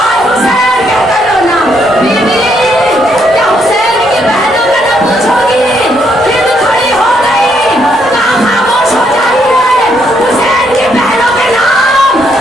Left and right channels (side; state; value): both; normal; correlation 0.74